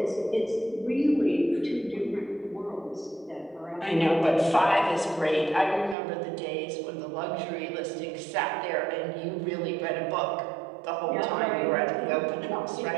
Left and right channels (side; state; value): left; drops out; at 6.0 s